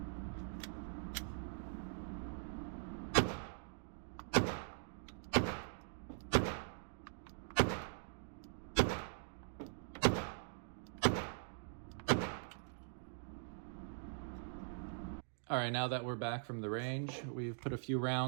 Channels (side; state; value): left; silent; digital silence